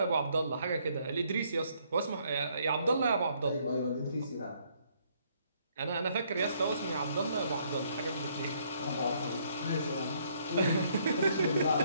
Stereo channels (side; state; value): both; inverted; correlation -0.68